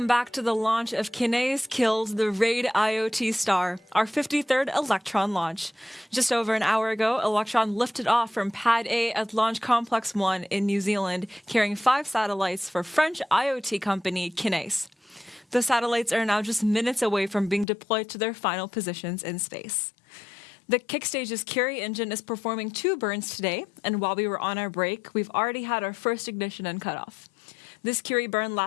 back to the launch of Kineis killed the RadIoT star, our 53rd Electron launch. Just over an hour ago, Electron lifted off from Pad A at Launch Complex 1 in New Zealand, carrying 5 satellites for French IoT company Kineis. The satellites are now just minutes away from being deployed to their final positions in space. The Kickstage's Curie engine is performing 2 burns today, and while we were on our break, we've already had our first ignition and cutoff. This Curie burn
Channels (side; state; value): right; drops out; at 17.7 s